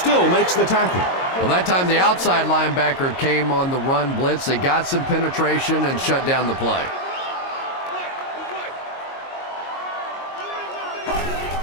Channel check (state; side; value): late; right; 22 ms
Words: makes the tackle. Well, that time the outside linebacker came on the run blitz. They got some penetration and shut down the play.